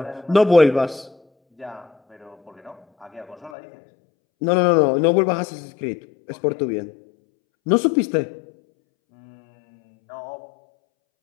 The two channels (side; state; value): right; drops out; at 3.6 s